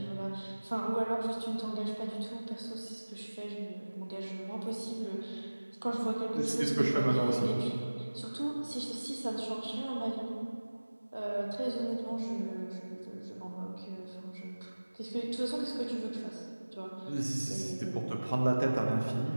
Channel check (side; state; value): both; inverted; correlation -1.00